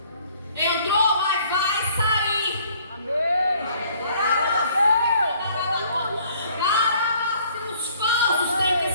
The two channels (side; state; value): both; inverted; correlation -0.59